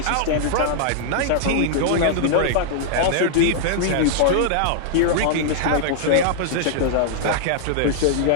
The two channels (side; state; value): both; different; correlation -0.01